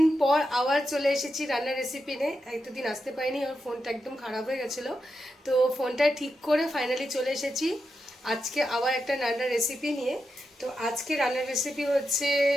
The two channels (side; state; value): both; normal; correlation 0.87